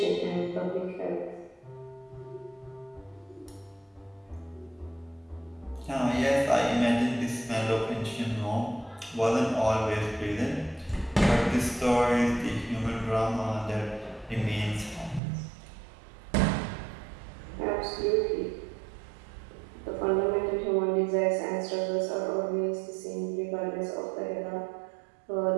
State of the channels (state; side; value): drops out; left; at 15.2 s